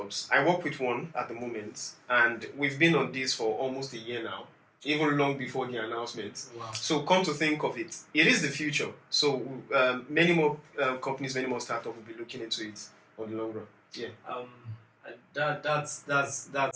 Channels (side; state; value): both; identical; correlation 1.00